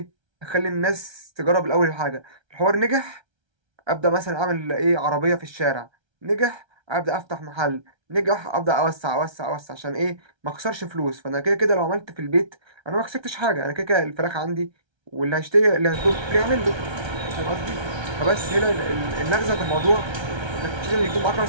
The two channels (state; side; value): late; left; 1.3 ms